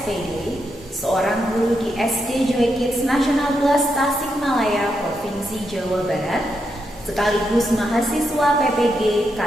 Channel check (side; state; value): both; normal; correlation 0.83